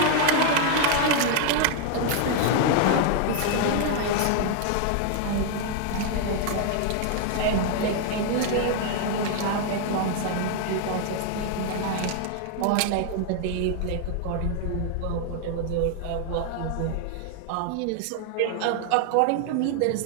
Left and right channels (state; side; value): different; both; correlation 0.00